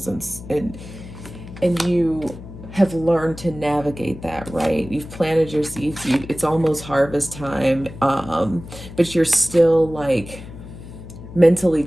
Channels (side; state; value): left; noise; hum, 14 dB below the sound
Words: and you have learned to navigate that, right? You've planted your seeds. It's almost harvest time, but you're still like mentally